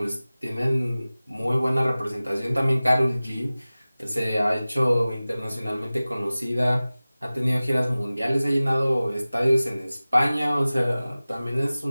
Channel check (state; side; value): inverted; both; correlation -0.98